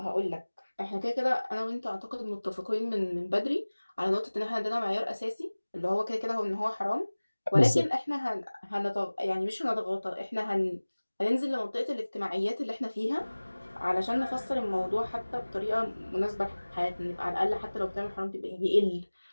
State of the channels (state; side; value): inverted; both; correlation -1.00